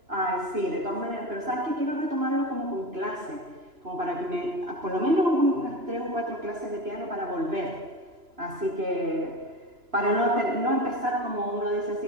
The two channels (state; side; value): late; left; 3.0 ms